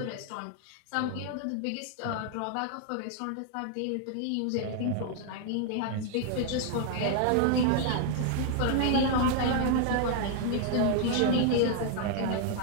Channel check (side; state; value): both; different; correlation 0.00